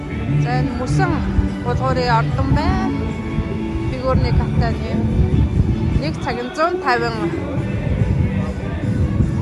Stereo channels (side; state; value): both; identical; correlation 1.00